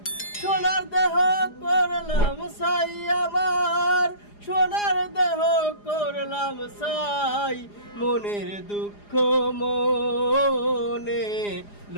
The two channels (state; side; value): late; right; 4.9 ms